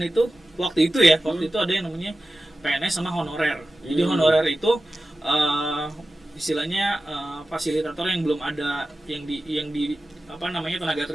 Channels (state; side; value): normal; both; correlation 0.94